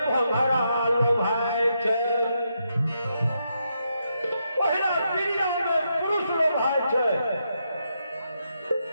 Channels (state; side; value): inverted; both; correlation -0.81